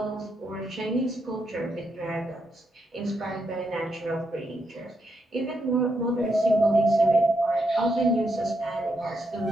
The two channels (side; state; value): both; normal; correlation 0.81